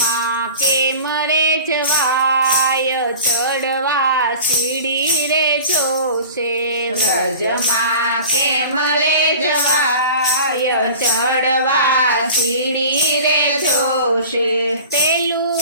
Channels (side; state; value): both; inverted; correlation -0.39